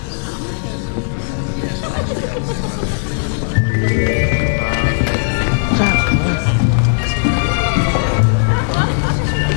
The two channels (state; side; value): silent; right; digital silence